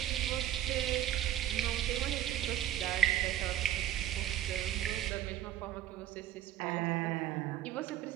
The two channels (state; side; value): quieter; left; 11.8 dB